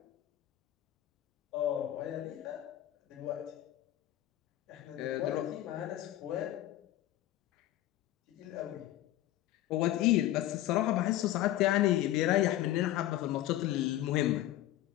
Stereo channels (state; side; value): quieter; right; 14.1 dB